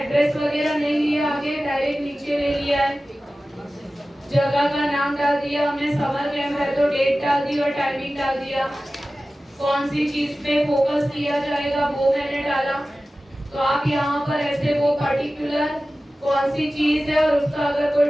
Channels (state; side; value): normal; both; correlation 0.96